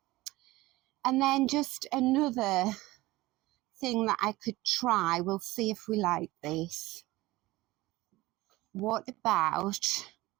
then just another thing that I could try. We'll see if we like this. What about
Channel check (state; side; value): quieter; left; 19.1 dB